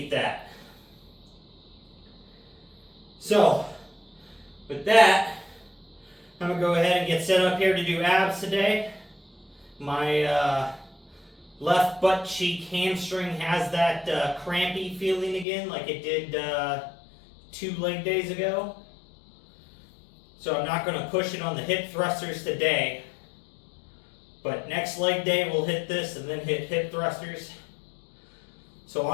that. So, with that, I'm going to go ahead and get set up here to do abs today. My left butt cheek hamstring has that crampy feeling again like it did 2 leg days ago. So I'm not going to push it on the hip thrusters today. But next leg day we'll hit this and then hit hip thrusters. So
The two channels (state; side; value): drops out; right; at 15.5 s